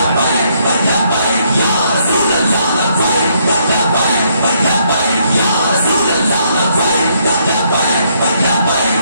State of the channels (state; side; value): inverted; both; correlation -0.72